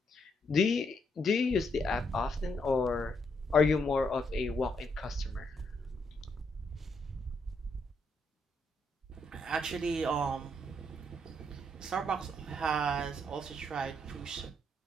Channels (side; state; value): both; normal; correlation 0.76